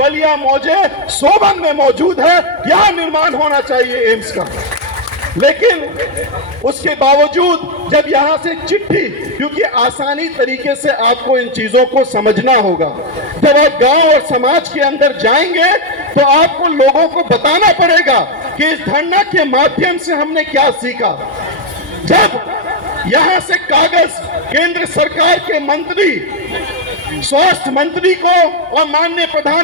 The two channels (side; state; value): both; normal; correlation 0.03